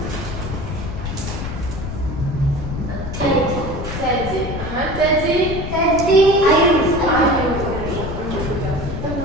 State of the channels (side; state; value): left; noise; rumble, 6 dB below the sound